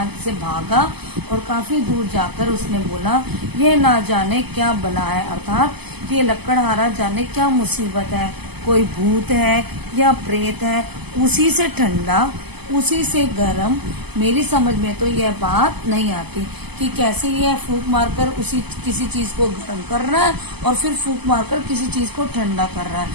से भागा और काफी दूर जाकर उसने बोला, यह ना जाने क्या बला है, अर्थात ये लकड़हारा जाने क्या मुसीबत है, कोई भूत है या प्रेत है, उसी से ठंडा उसी से गर्म। मेरी समझ में तो यह बात नहीं आती कि कैसे यह फूंक मारकर उसी किसी चीज को गर्म कर रहा है और फिर फूंक मारकर किसी चीज को ठंडा कर रहा है।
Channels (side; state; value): left; late; 0.98 ms